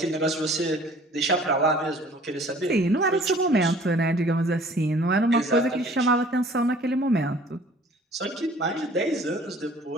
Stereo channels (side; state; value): both; normal; correlation 0.52